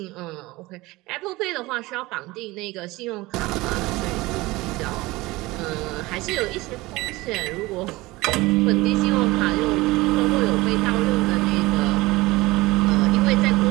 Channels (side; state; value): left; quieter; 20.5 dB